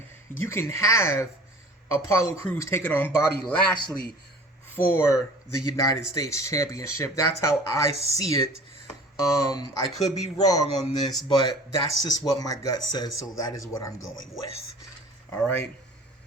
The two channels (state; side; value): normal; both; correlation 0.44